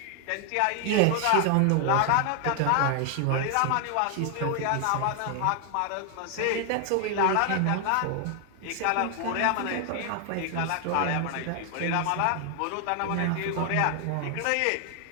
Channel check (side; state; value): both; different; correlation 0.00